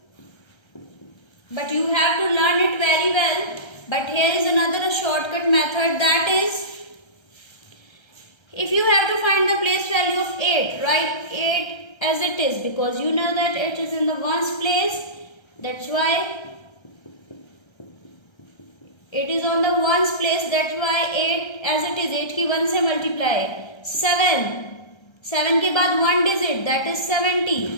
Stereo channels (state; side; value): late; right; 1.3 ms